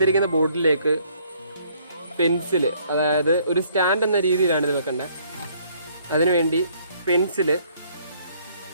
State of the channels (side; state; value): both; inverted; correlation -0.64